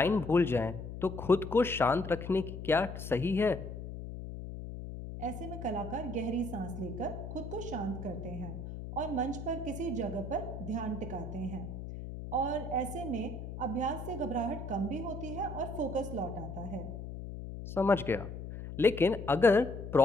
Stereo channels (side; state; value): left; noise; hum, 8 dB below the sound